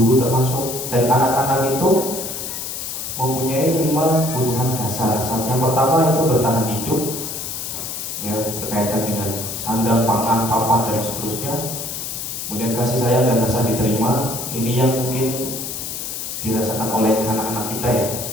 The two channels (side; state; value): left; noise; hiss, 6 dB below the sound